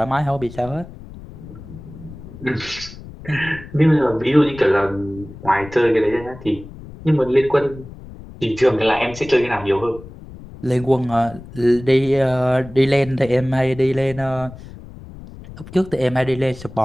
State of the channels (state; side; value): noise; left; rumble, 16 dB below the sound